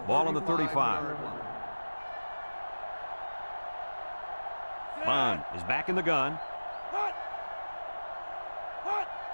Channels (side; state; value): both; inverted; correlation -1.00